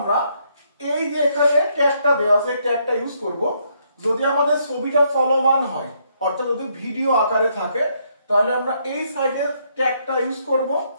এই যে এখানে ট্যাগটা দেওয়া আছে এই ট্যাগটা ইউজ করব। যদি আমাদের ছবিটা চলমান হয় অর্থাৎ যদি ভিডিও আকারে থাকে তাহলে আমরা এই সাইডের ট্যাগটা ইউজ করব।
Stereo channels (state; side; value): inverted; both; correlation -0.73